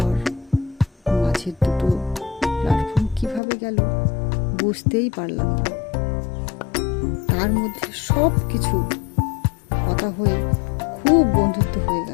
মাঝের দুটো প্ল্যাটফর্ম কিভাবে গেল বুঝতেই পারলাম না। তার মধ্যে সব কিছু কথা হয়ে খুব বন্ধুত্ব হয়ে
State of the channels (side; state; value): right; drops out; at 3.4 s